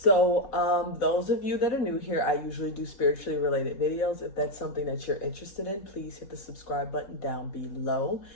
those of you that are new here, I usually do spiritually related videos. If that's something that you're interested in, please hit the subscribe button down below.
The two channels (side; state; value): right; late; 5.0 ms